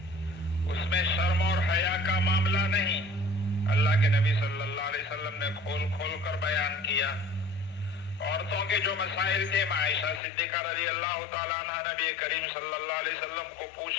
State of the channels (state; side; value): drops out; right; at 10.2 s